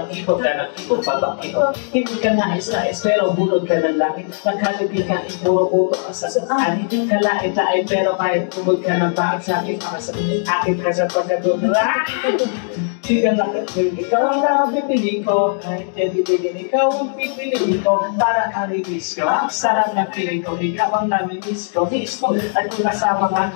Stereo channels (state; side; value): silent; right; 67 dB below the other